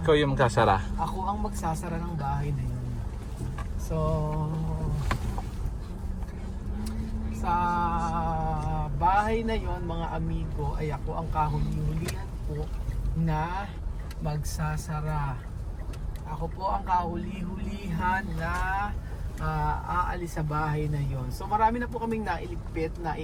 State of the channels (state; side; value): identical; both; correlation 1.00